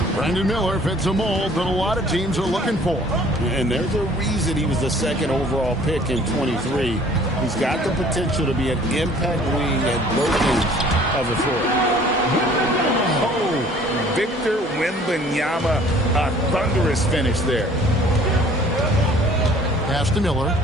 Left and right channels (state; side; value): normal; both; correlation 0.54